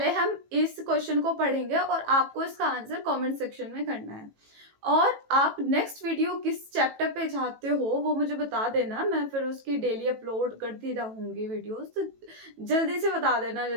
हम इस क्वेश्चन को पढ़ेंगे और आपको इसका आंसर कमेंट सेक्शन में करना है। और आप नेक्स्ट वीडियो किस चैप्टर पे चाहते हो वो मुझे बता देना, मैं फिर उसकी डेली अपलोड करती रहूंगी वीडियोस। तो जल्दी से बता देना,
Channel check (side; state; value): left; late; 18 ms